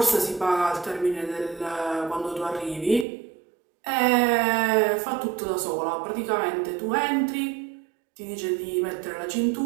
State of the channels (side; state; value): left; drops out; at 3.1 s